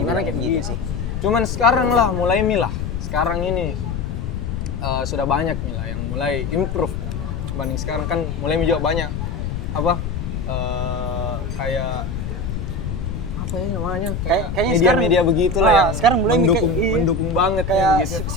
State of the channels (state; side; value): noise; left; rumble, 4 dB below the sound